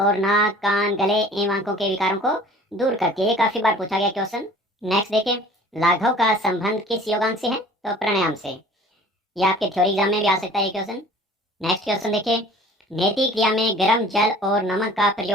नाक, कान, गले एवं आंखों के विकारों को दूर करती है। ये काफी बार पूछा गया क्वेश्चन। नेक्स्ट देखिए, लाघव का संबंध किस योगांग से है? तो प्राणायाम से। ये आपके थ्योरी एग्जाम में भी आ सकता है ये क्वेश्चन। नेक्स्ट क्वेश्चन देखिए, नेति क्रिया में गर्म जल और नमक का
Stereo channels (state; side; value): normal; both; correlation 0.47